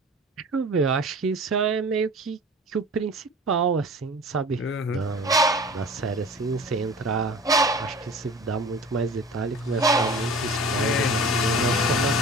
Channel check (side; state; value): both; normal; correlation 0.40